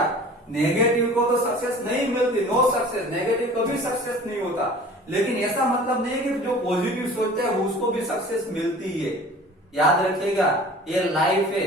नेगेटिव को तो सक्सेस नहीं मिलती, नो सक्सेस, नेगेटिव कभी सक्सेस नहीं होता। लेकिन ऐसा मतलब नहीं है कि जो पॉजिटिव सोचते हैं उसको भी सक्सेस मिलती है। याद रखिएगा, ये लाइफ है,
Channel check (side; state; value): both; normal; correlation 0.44